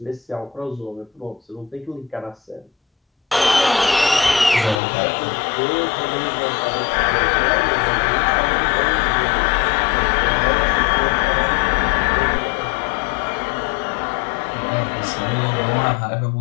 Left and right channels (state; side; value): drops out; right; at 4.8 s